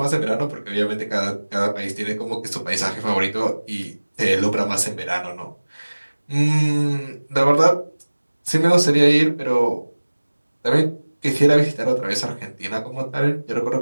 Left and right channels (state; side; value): inverted; both; correlation -1.00